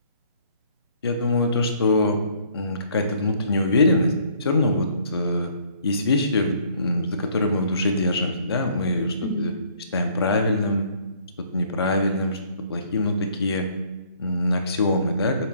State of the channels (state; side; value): inverted; both; correlation -0.61